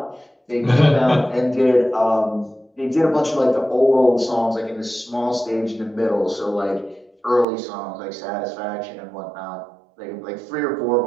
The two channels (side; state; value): left; drops out; at 7.5 s